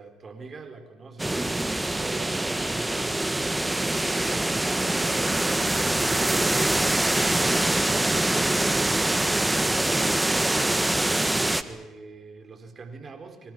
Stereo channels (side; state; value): both; normal; correlation 0.98